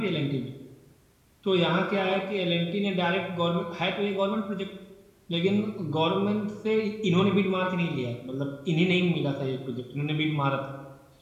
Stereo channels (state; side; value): identical; both; correlation 1.00